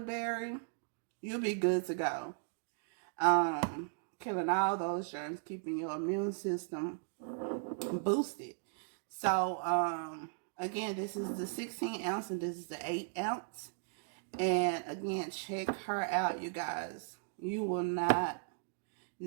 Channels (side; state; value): left; silent; digital silence